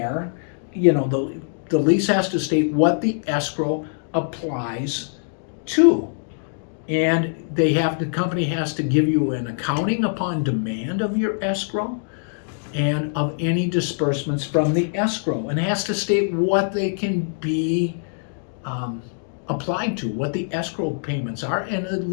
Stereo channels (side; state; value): right; silent; digital silence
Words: the lease has to state what the escrow applies to. And the company has to give you an accounting upon demand of your escrow and of any disbursements from the escrow, and has to state what they can be applied to, what the escrow payments are. And the